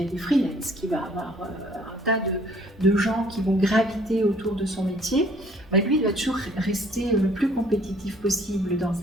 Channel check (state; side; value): normal; both; correlation 0.59